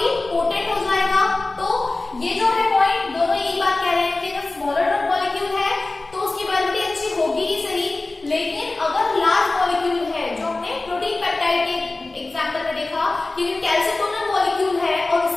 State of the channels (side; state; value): right; quieter; 3.2 dB